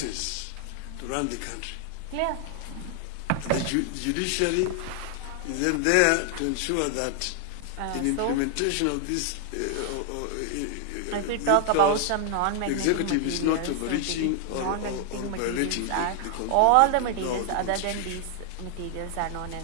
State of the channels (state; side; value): different; both; correlation 0.00